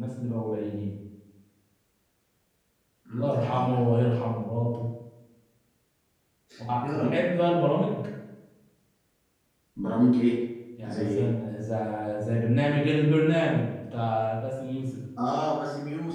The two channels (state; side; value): identical; both; correlation 1.00